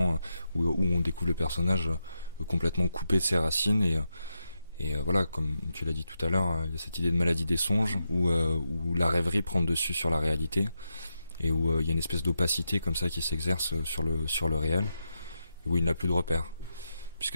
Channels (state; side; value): inverted; both; correlation -0.86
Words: où on découvre le personnage complètement coupé de ses racines, et voilà, comme tu l'as dit tout à l'heure, il y a cette idée de maladie des songes où la rêverie prend le dessus sur la réalité, et où il y a une espèce d'opacité comme ça qui s'exerce sur le réel, où il n'a plus de repères,